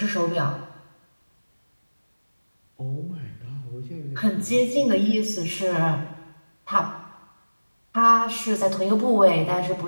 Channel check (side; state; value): both; inverted; correlation -1.00